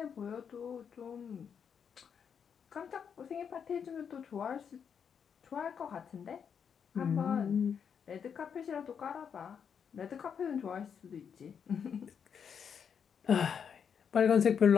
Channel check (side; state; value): right; quieter; 7.2 dB